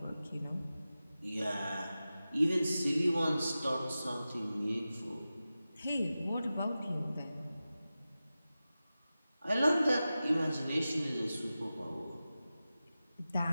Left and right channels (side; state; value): both; inverted; correlation -0.94